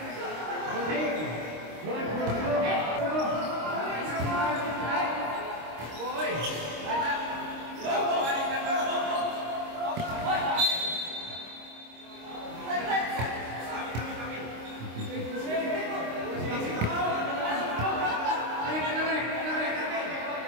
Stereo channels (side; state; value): left; late; 26 ms